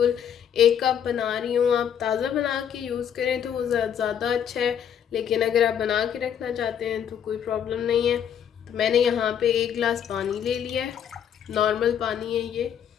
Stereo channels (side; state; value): right; quieter; 8.8 dB